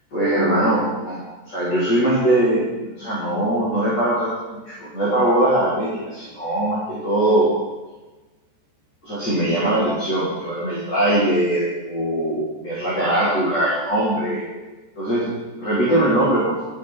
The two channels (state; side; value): late; right; 14 ms